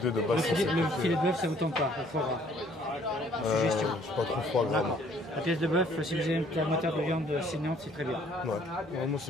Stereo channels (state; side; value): normal; both; correlation 0.60